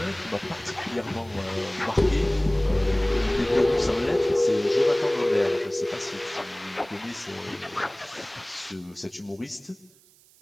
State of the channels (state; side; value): noise; right; hiss, 28 dB below the sound